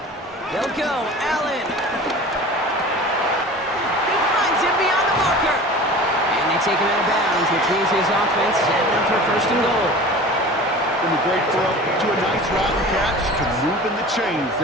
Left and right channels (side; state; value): both; normal; correlation 0.38